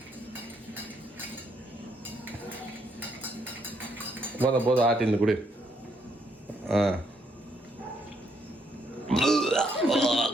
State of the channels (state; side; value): normal; both; correlation 0.73